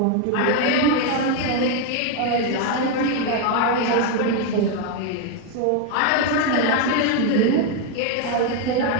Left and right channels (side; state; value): both; different; correlation 0.01